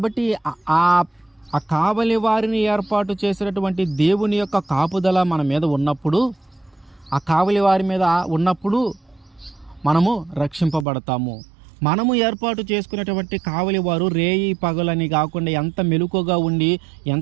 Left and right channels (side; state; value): left; drops out; at 10.9 s